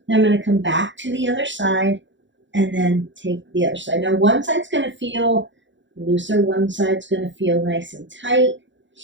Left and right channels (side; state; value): left; late; 0.54 ms